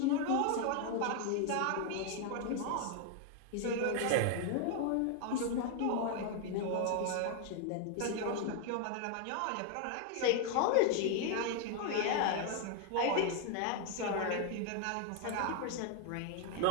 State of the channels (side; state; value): both; different; correlation 0.01